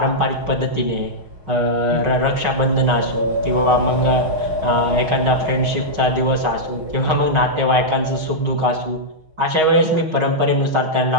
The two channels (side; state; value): left; late; 6.3 ms